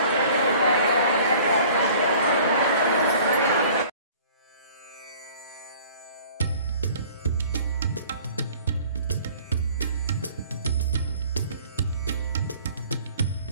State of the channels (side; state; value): both; inverted; correlation -0.50